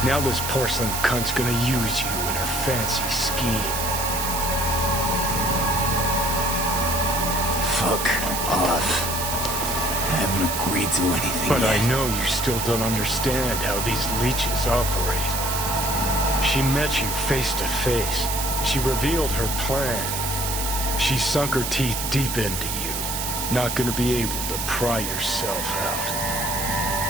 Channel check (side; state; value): right; noise; hiss, 3 dB below the sound